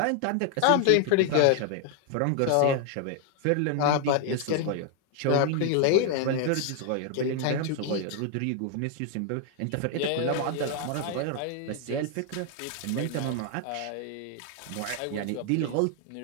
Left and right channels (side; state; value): both; different; correlation 0.00